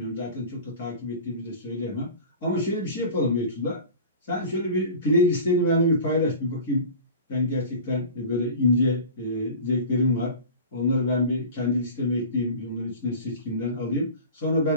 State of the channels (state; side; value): inverted; both; correlation -0.37